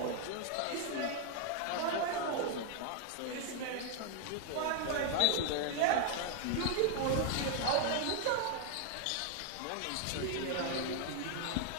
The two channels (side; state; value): both; different; correlation 0.00